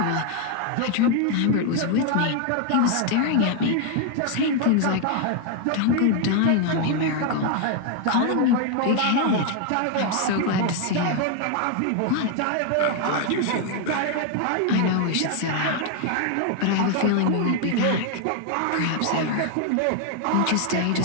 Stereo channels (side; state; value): both; different; correlation 0.01